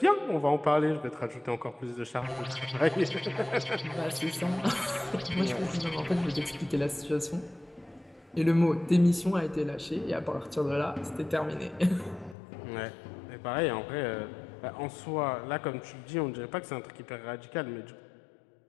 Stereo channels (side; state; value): right; drops out; at 12.4 s